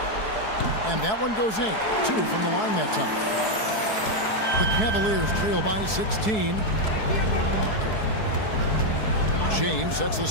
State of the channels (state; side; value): late; right; 4.7 ms